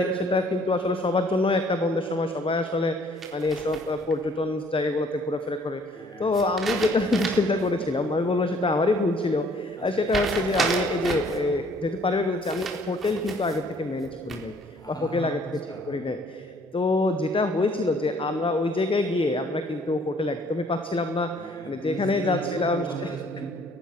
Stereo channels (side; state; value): both; normal; correlation 0.59